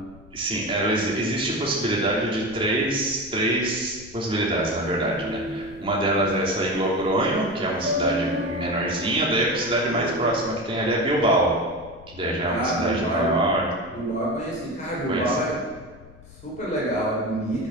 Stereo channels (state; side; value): noise; left; rumble, 21 dB below the sound